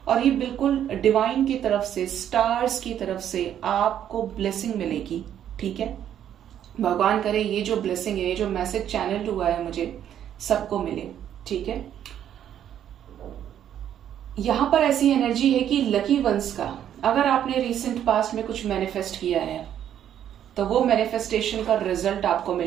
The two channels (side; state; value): left; quieter; 10.1 dB